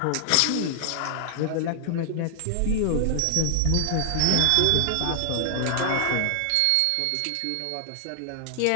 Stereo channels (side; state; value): both; different; correlation 0.00